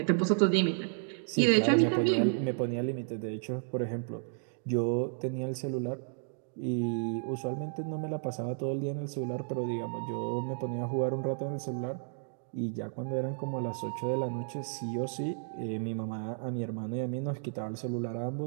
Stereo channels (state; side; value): silent; left; digital silence